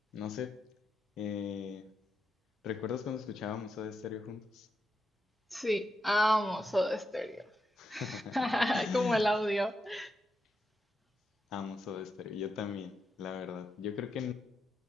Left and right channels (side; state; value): both; normal; correlation 0.85